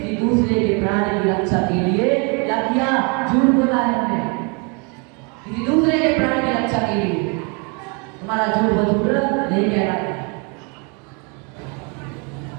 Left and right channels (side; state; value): left; quieter; 33.9 dB